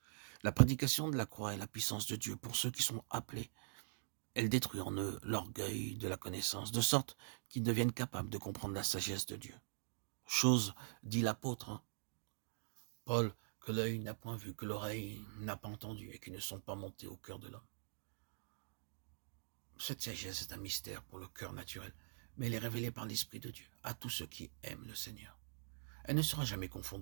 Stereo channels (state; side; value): silent; left; digital silence